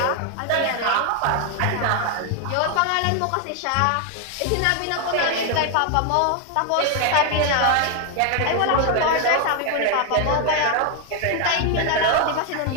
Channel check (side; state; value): both; different; correlation 0.01